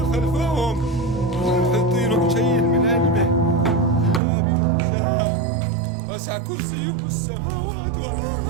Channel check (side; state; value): left; drops out; at 4.2 s